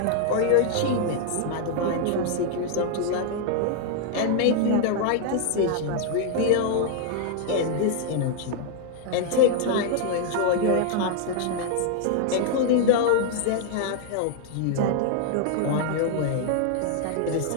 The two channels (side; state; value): both; different; correlation 0.00